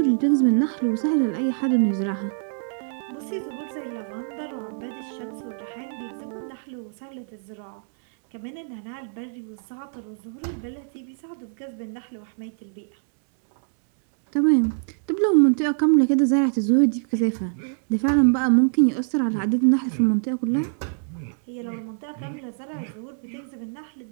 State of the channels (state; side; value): silent; left; digital silence